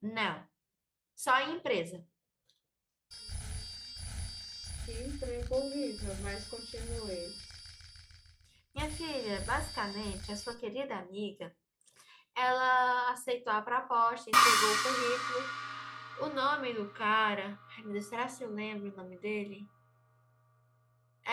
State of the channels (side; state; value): both; identical; correlation 1.00